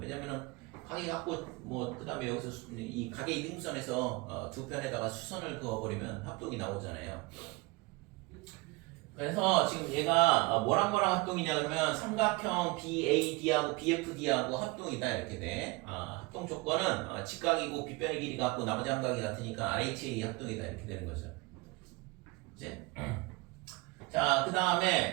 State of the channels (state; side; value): quieter; left; 25.2 dB